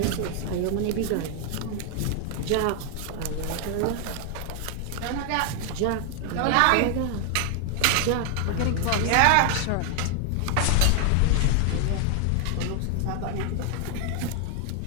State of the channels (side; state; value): both; different; correlation 0.00